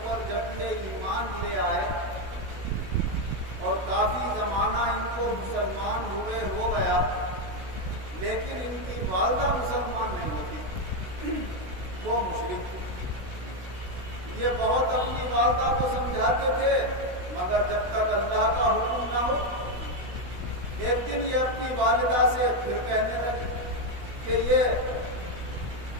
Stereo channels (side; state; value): left; late; 16 ms